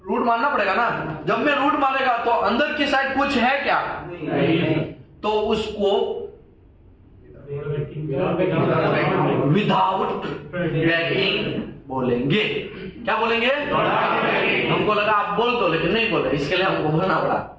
रूट मारना पड़ेगा ना। जब मैं रूट मारेगा तो अंदर की साइड कुछ है क्या? नहीं। तो उसको विदाउट बैकिंग बोलेंगे। क्या बोलेंगे? हमको लगा आप बोल दो, लेकिन नहीं बोले, इसके लिए हमको बोलना पड़ा।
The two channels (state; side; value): identical; both; correlation 1.00